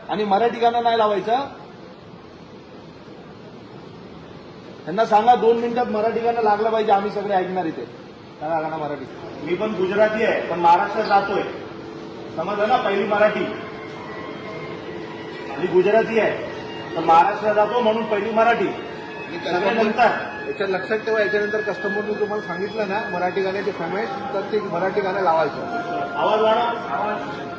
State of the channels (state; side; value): identical; both; correlation 1.00